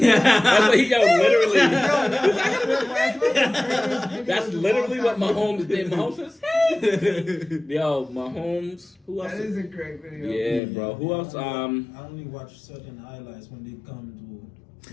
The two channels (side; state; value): right; drops out; at 10.6 s